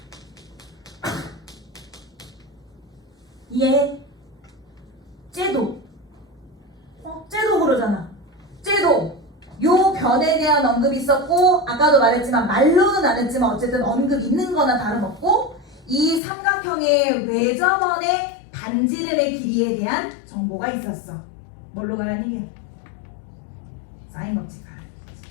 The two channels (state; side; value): drops out; right; at 16.2 s